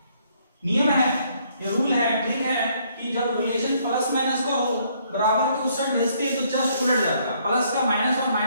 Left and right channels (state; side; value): inverted; both; correlation -0.68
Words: नियम है, ये रूल है, ट्रिक है कि जब रिलेशन प्लस माइनस का हो, बराबर के उस साइड भेजते हैं तो जस्ट उलट जाता है, प्लस का माइनस और